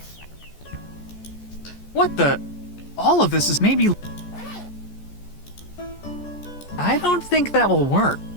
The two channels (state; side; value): late; right; 14 ms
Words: What the? All of this is maybe... I don't think that will work.